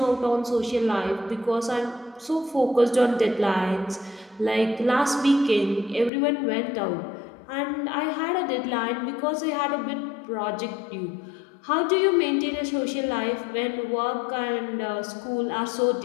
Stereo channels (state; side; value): drops out; right; at 6.1 s